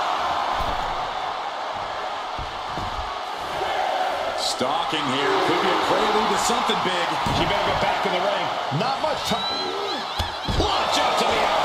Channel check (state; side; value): identical; both; correlation 1.00